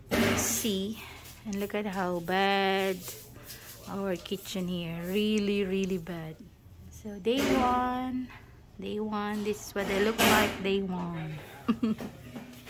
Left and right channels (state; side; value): identical; both; correlation 1.00